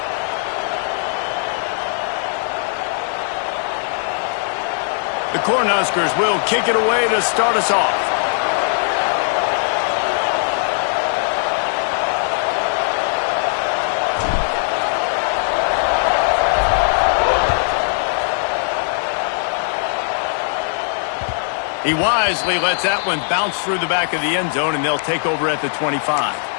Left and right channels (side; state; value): right; silent; digital silence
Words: The Cornhuskers will kick it away to start us off. He wisely lets that one bounce through the back of the end zone, and they'll take over at the 25.